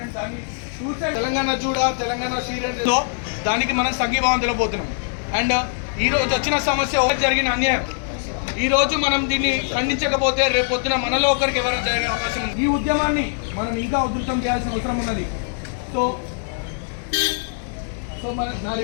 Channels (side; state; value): right; silent; digital silence